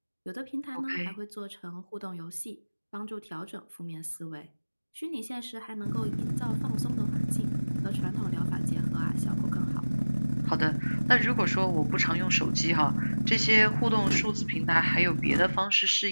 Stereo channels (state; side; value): inverted; both; correlation -1.00